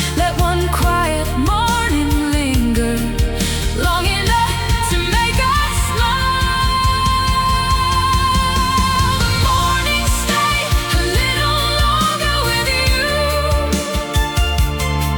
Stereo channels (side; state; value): both; identical; correlation 1.00